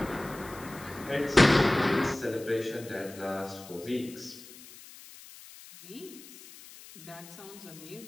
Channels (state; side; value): noise; left; hiss, 18 dB below the sound